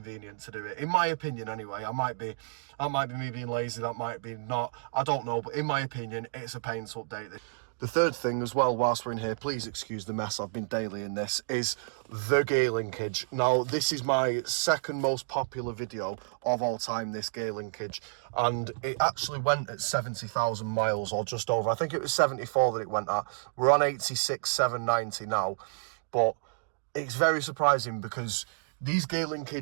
to do it. In my opinion, anyway. That might be me being lazy, that might be not. I don't know, but in my opinion, it's a pain to update this. The third thing as well, whilst we're in here, please excuse the mess, I've been daily in this, is the gear linkage. Now, this is my second most popular video of all time, this gear linkage, and it actually went at 70,000 miles or just over. I think it was 74 that it went at. We're on 86,790 now, but it's very surprising because these gear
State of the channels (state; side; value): silent; left; digital silence